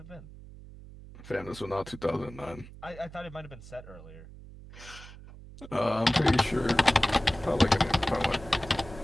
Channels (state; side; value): noise; right; hum, 17 dB below the sound